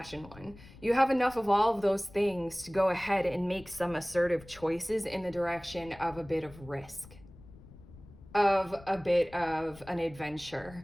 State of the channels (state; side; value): noise; left; rumble, 20 dB below the sound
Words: one. You have enough of all of those things to go ahead and make some assertive choices in the direction of a bit of risk, of a bit of an